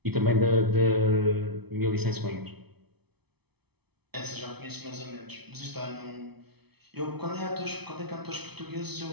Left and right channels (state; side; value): late; left; 0.98 ms